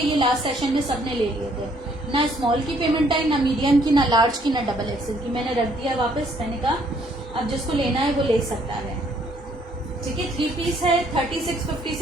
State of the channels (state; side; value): normal; both; correlation 0.65